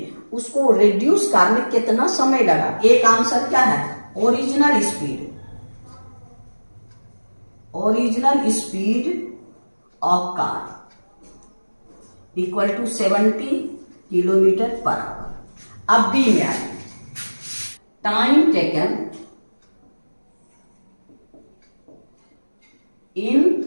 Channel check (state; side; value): inverted; both; correlation -1.00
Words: उसको रिड्यूस करने कितना समय लगा। एक आंसर क्या है, original speed of car equal to 70 kilometre per hour. अब बी में आइए, time taken in